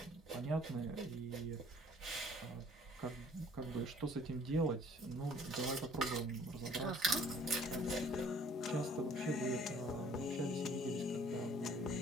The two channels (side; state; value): both; normal; correlation 0.56